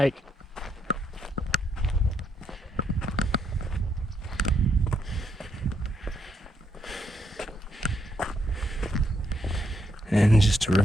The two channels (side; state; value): both; normal; correlation 0.76